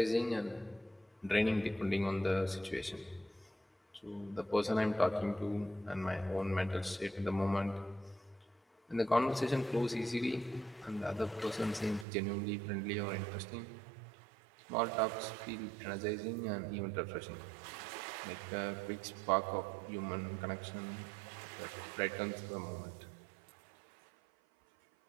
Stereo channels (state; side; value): drops out; left; at 12.1 s